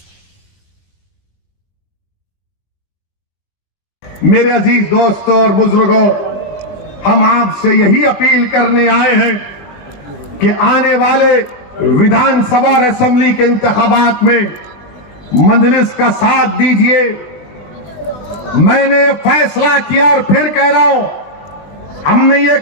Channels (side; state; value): right; late; 20 ms